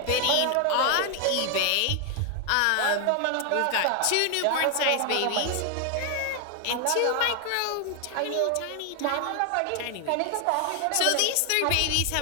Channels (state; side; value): different; both; correlation 0.00